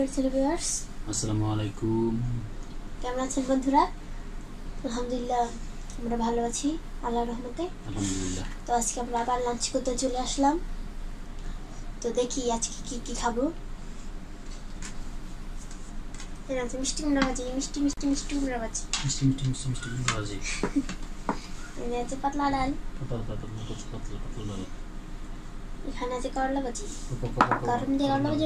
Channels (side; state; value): both; identical; correlation 1.00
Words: ভিউয়ার্স। আসসালামু আলাইকুম। কেমন আছেন বন্ধুরা? আলহামদুলিল্লাহ আমরা ভালো আছি আল্লাহর রহমতে। আলহামদুলিল্লাহ। তো আজকে আমরা আবার লাঞ্চ করতে চলে আসলাম। তো দেখি আজকে কি খাবো। এর আছে মিষ্টি কুমড়া ভাজি, মিষ্টি কুমড়া ভাজি। মিষ্টি কুমড়া ভাজি। এর আছে পাতলা ডাল। পাতলা। এখানে আছে করলা ভাজি। গরম দিয়ে করলা ভাজি